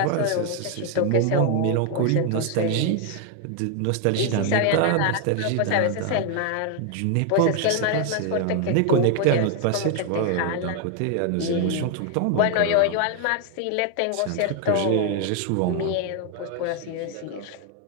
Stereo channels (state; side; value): different; both; correlation 0.01